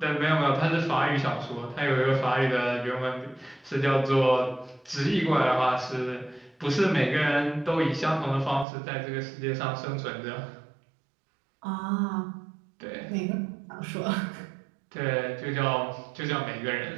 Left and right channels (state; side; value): drops out; left; at 8.7 s